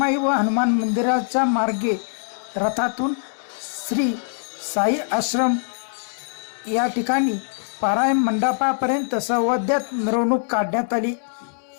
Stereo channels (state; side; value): silent; right; digital silence